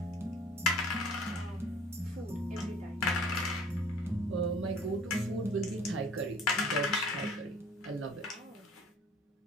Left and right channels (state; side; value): normal; both; correlation 0.50